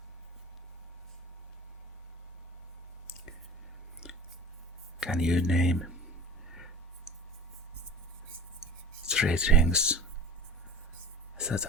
Can you name 3 things that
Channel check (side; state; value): both; normal; correlation 0.40